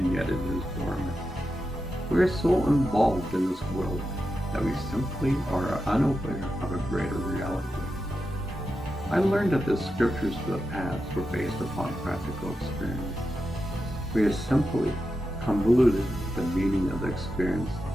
yet it is dormant. We are so involved in this world that we simply are unaware of a greater reality. I learned that the scriptures of the past were based upon practical experience. We have simply convoluted the meaning of the experience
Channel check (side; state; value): both; normal; correlation 0.89